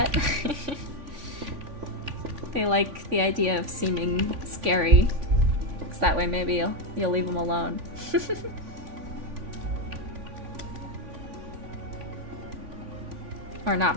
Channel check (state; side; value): late; left; 3.5 ms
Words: They like the idea of seeming scary, because that way maybe you'll leave them alone. Or